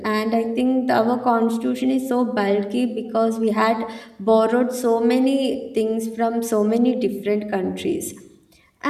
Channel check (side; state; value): both; identical; correlation 1.00